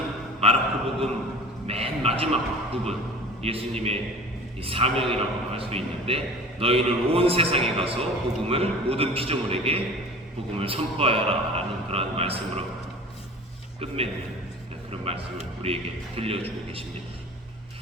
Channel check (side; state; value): both; normal; correlation 0.40